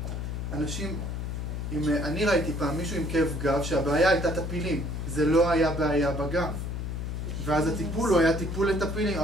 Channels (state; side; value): noise; left; hum, 4 dB below the sound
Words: אנשים, אני ראיתי פעם מישהו עם כאב גב שהבעיה הייתה טפילים, זה לא היה בעיה בגב. ואז הטיפול הוא היה טיפול לטפילים,